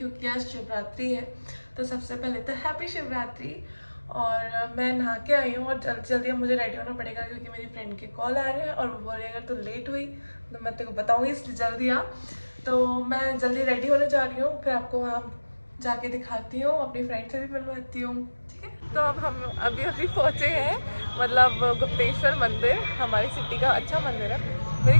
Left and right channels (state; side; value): inverted; both; correlation -1.00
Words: आज शिवरात्रि है। तो सबसे पहले तो हैप्पी शिवरात्रि। और मैं नहा के आई हूँ और जल्दी जल्दी अब मुझे रेडी होना पड़ेगा क्योंकि मेरी फ्रेंड के कॉल आ रहे हैं और वो बोल रही अगर तो लेट हुई तो मैं तेरे को बताऊँगी, इसलिए जल्दी आ। तो मैं जल्दी रेडी होने जा रही हूँ, फिर आपको वहाँ जाके दिखाती हूँ, अपनी फ्रेंड से भी मिलवाती हूँ, ठीक है। तो अब हम अभी पहुँचे हैं, मतलब गुप्तेश्वर मंदिर हमारी सिटी का अच्छा मंदिर है। मेरी